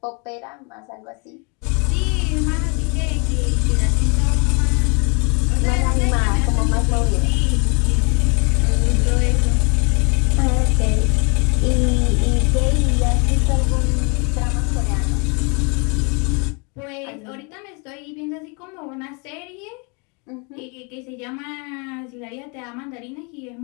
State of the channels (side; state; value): right; quieter; 32.8 dB